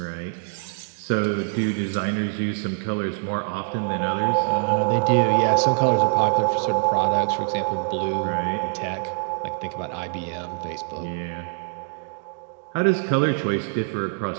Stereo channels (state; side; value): silent; left; digital silence